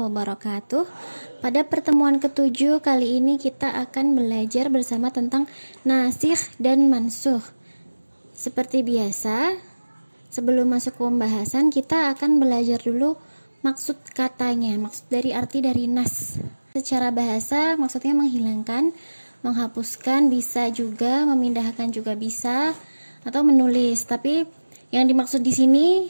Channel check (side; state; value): both; inverted; correlation -1.00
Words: Pada pertemuan ke-7 kali ini kita akan belajar bersama tentang nasikh dan mansukh. Seperti biasa, sebelum masuk ke pembahasan kita akan belajar dulu maksud katanya, maksud dari arti dari nas. Secara bahasa maksudnya menghilangkan, menghapuskan, bisa juga memindahkan, juga bisa, atau menulis. Tapi yang dimaksud di sini